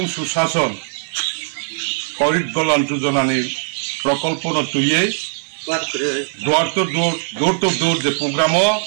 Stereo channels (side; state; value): left; silent; 66 dB below the other